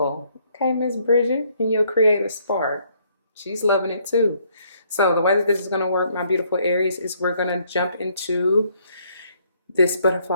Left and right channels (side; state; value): both; inverted; correlation -0.67